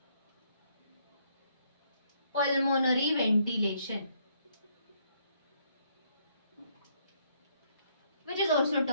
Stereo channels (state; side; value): inverted; both; correlation -0.70